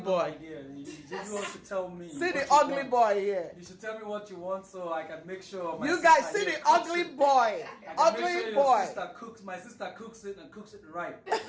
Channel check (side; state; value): both; identical; correlation 1.00